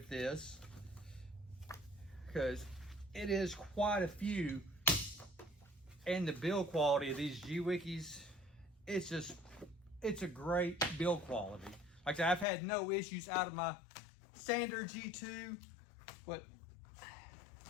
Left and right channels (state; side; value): drops out; right; at 12.5 s